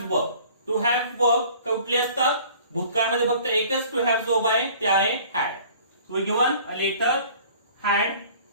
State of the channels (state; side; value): inverted; both; correlation -0.50